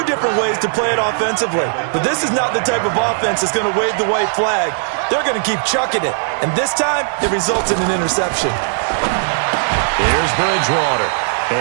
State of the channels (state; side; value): silent; left; 68 dB below the other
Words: different ways to play it offensively. But this is not the type of offense that's going to wave the white flag. They're going to keep chucking it. And this time, it results in an interception. Here's Bridgewater.